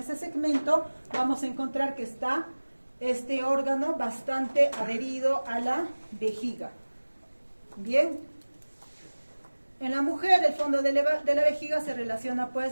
segmento vamos a encontrar que está este órgano bastante adherido a la vejiga. Bien. En la mujer, el fondo de la vejiga se relaciona,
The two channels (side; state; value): both; inverted; correlation -1.00